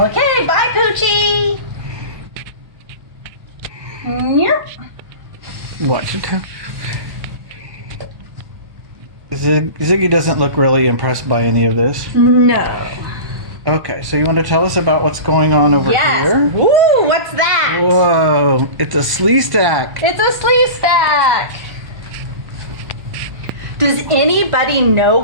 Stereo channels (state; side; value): late; left; 1.0 ms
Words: bye, Poochie. Yep. What? Ziggy doesn't look really impressed by any of this. No. Okay, so you want to tell us about what's going on over here? Woo, what's that? Whoa, it's a slee stack. It's a slee stack. Does anybody know